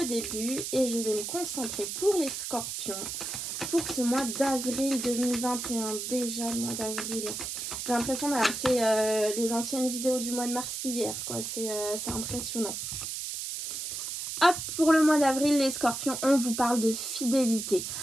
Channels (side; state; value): right; noise; hiss, 5 dB below the sound